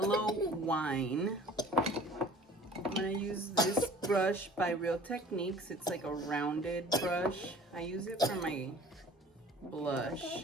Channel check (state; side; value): normal; both; correlation 0.48